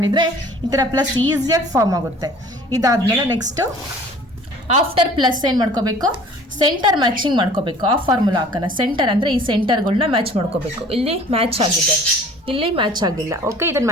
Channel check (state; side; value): normal; both; correlation 0.49